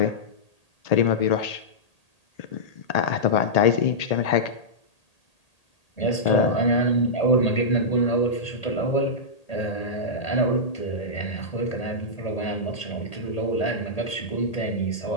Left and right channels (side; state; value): right; late; 1.8 ms